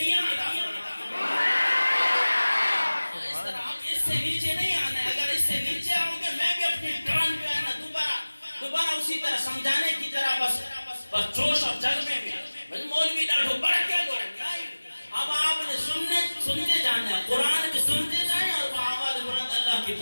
عطا فرماتا ہے. اس طرح آپ اس سے نیچے نہیں آنا ہے. اگر اس سے نیچے آؤ گے میں بھی اپنی ٹرن جو ہے نا دوبارہ اسی طرح سمجھانے کی طرح بس جوش اور جذبے میں مولوی ڈاٹو بڑھ کے دو. اب آپ نے سنتے جانا ہے, قرآن بھی سنتے جائیں اور وہ آواز بلند اللہ کی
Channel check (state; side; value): inverted; both; correlation -1.00